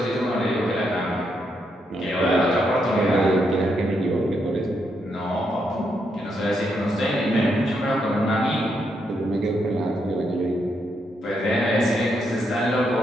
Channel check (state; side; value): normal; both; correlation 0.79